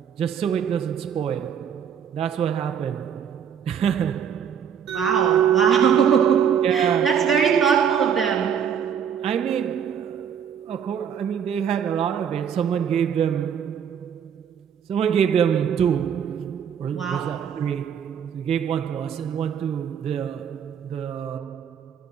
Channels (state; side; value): quieter; left; 8.1 dB